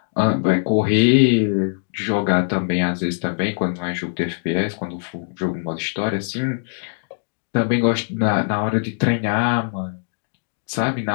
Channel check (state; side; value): silent; right; digital silence